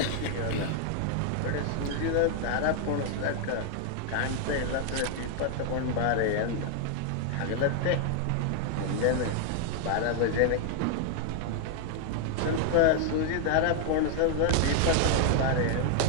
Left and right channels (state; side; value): different; both; correlation 0.00